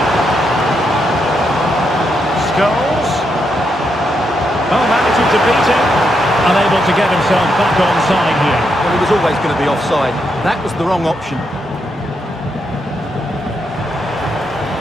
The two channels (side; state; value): both; normal; correlation 0.81